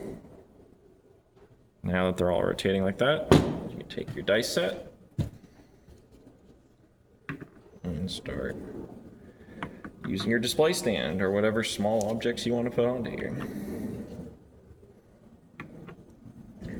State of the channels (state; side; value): identical; both; correlation 1.00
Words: now that they're all rotating like that, you can take your dice set and start using your display stand or whatever small objects you want to put onto here.